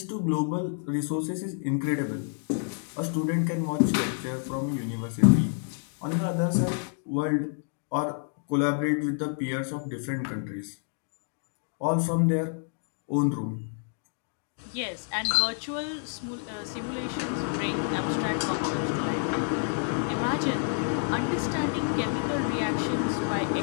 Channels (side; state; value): right; silent; 59 dB below the other